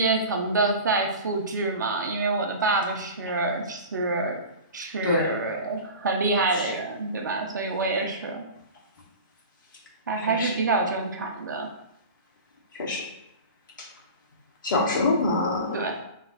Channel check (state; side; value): inverted; both; correlation -0.34